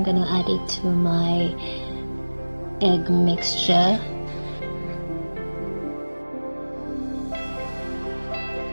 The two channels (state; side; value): inverted; both; correlation -1.00